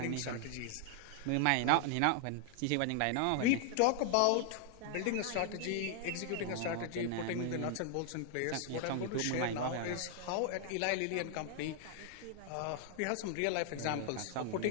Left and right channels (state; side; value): different; both; correlation 0.00